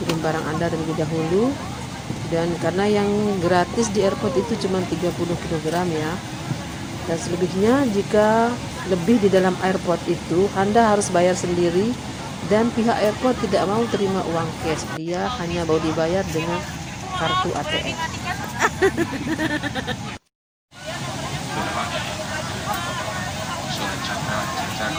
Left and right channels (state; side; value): identical; both; correlation 1.00